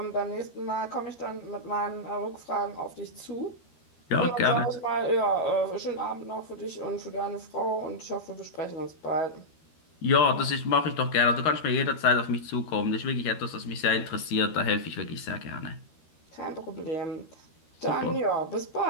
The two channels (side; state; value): right; late; 13 ms